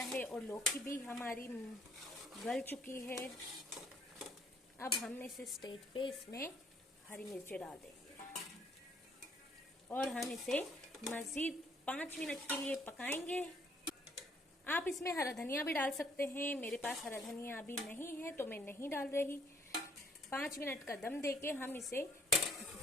है और लौकी भी हमारी गल चुकी है। अब हम इस स्टेज पे इसमें हरी मिर्ची डाल देंगे और हम इसे मज़ीद 5 मिनट के लिए पकाएंगे। आप इसमें हरा धनिया भी डाल सकते हैं। मेरे पास हरा धनिया अभी नहीं है तो मैं नहीं डाल रही। 5 मिनट का दम देके हम इसे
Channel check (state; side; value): normal; both; correlation 0.64